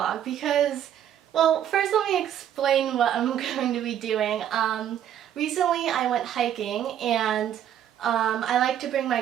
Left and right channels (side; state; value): left; quieter; 10.2 dB